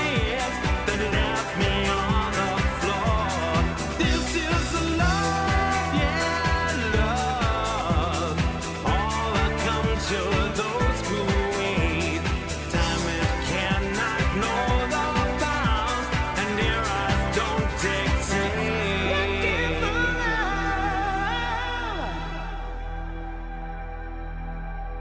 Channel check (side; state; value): both; identical; correlation 1.00